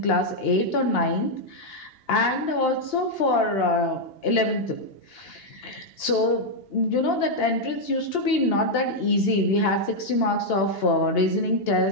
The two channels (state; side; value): late; right; 2.8 ms